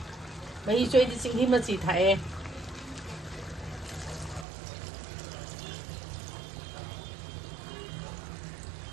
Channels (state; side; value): drops out; left; at 4.5 s